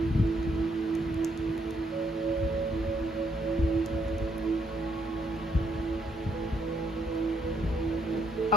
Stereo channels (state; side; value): normal; both; correlation 0.72